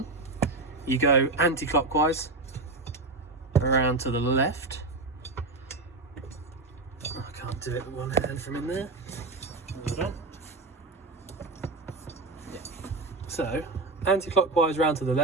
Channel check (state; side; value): quieter; left; 3.2 dB